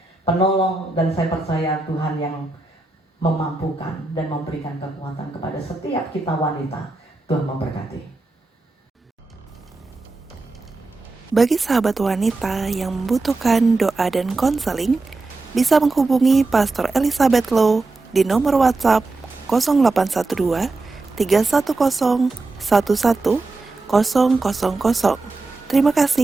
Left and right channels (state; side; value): quieter; left; 3.4 dB